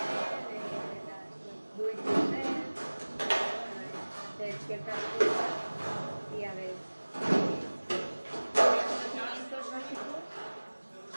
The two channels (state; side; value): inverted; both; correlation -1.00